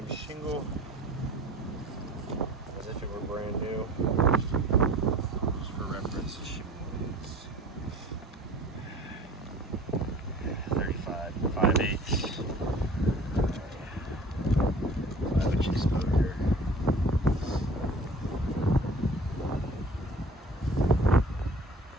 shingle as if it were brand new. Just for reference, the shingle is 35, 5/8, 5-inch exposure.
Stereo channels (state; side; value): normal; both; correlation 0.45